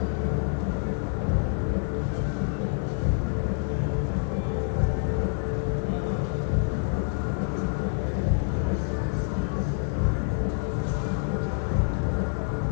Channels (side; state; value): right; silent; 60 dB below the other